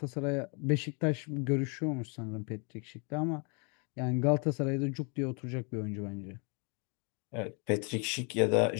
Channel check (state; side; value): quieter; right; 35.1 dB